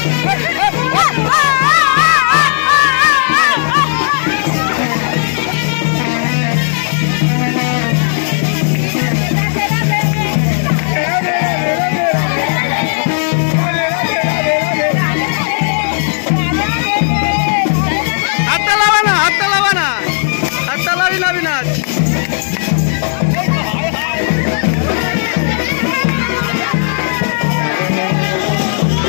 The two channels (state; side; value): silent; right; digital silence